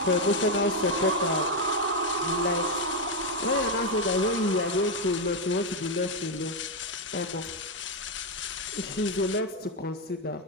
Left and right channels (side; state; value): both; normal; correlation 0.03